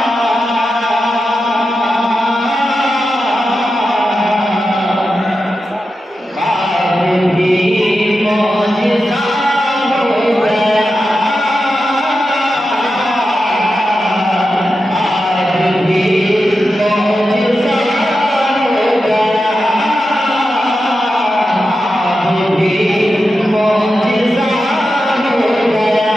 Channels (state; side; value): normal; both; correlation 0.90